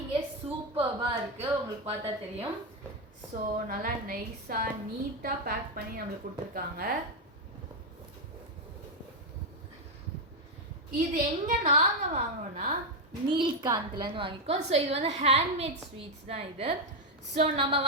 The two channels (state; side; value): normal; both; correlation 0.04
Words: சூப்பர்பாக இருக்குது, உங்களுக்கு பார்த்தா தெரியும். ஸோ நல்லா நைஸாக நீட்டாக பேக் பண்ணி நம்மளுக்கு கொடுத்துருக்காங்க. இது எங்கே நாங்கள் வாங்கினோன்னா நீல்காந்த்லேருந்து வாங்கிக்கோம். ஸோ இது வந்து ஹேண்ட்மேட் ஸ்வீட்ஸ் தான் இது. ஸோ நம்ம